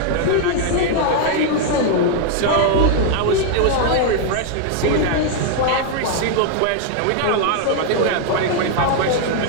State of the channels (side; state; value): both; different; correlation 0.00